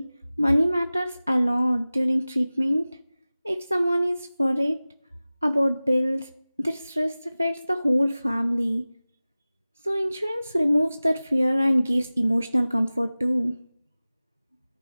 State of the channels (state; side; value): inverted; both; correlation -0.97